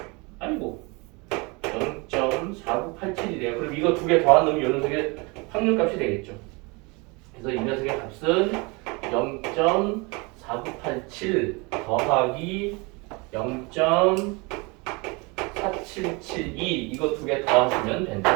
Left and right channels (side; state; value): left; quieter; 28.0 dB